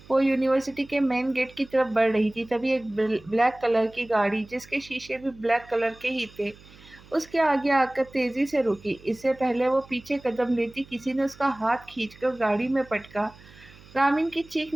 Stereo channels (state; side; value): noise; right; hum, 23 dB below the sound